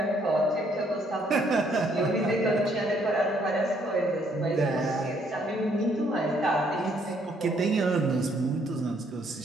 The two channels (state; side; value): normal; both; correlation 0.68